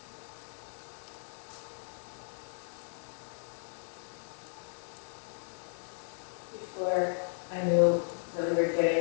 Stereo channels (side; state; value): right; silent; digital silence